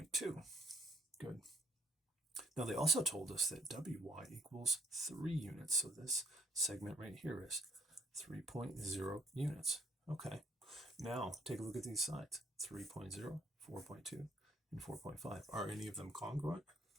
Good. Now they also told us that WY equals 3 units. So this segment right here is 3.0 units. Okay. Now take a look at these sides. 3.0, 4.2, and 4.5. Are any of them congruent?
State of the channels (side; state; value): both; normal; correlation 0.66